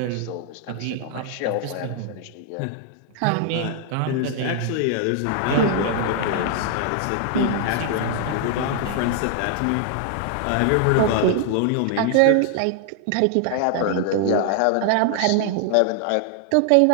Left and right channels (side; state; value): both; different; correlation 0.00